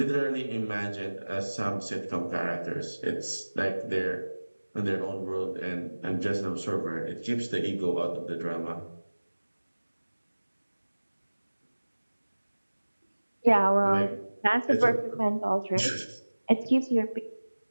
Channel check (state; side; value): inverted; both; correlation -1.00